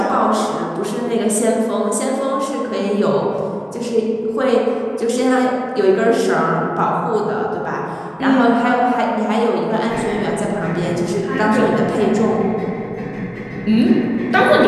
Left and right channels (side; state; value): both; identical; correlation 1.00